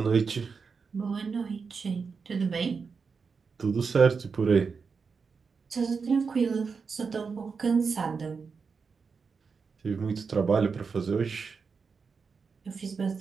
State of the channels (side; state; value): left; quieter; 5.3 dB